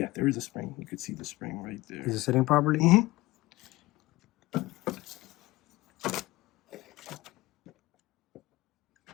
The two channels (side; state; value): right; quieter; 19.6 dB